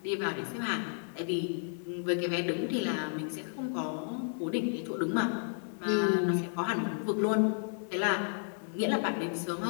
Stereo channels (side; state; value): right; silent; digital silence